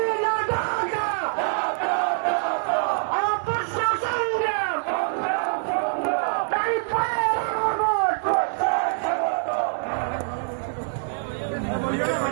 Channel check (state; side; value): silent; left; digital silence